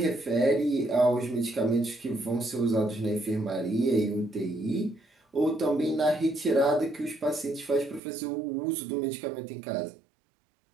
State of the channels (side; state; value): left; drops out; at 8.0 s